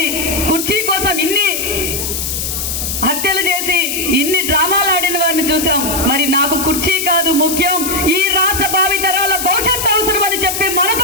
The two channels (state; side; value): noise; left; hiss, 3 dB below the sound